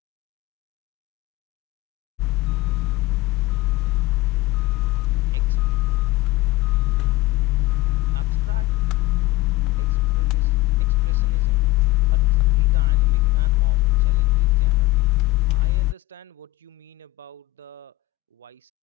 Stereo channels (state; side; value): quieter; right; 19.7 dB